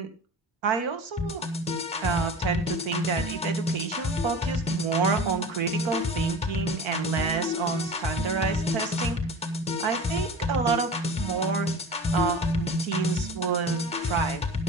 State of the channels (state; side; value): normal; both; correlation 0.36